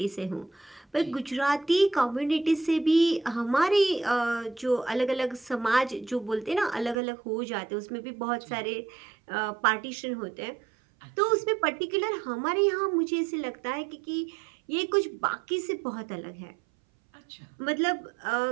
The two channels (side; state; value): left; drops out; at 7.0 s